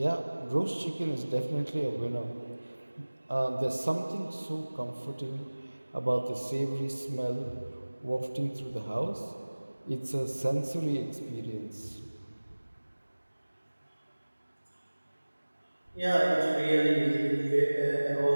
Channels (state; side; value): inverted; both; correlation -1.00